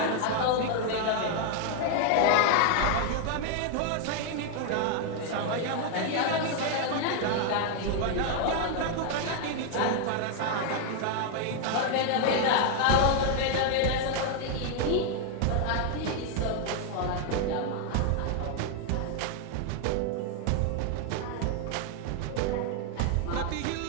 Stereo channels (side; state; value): both; different; correlation 0.01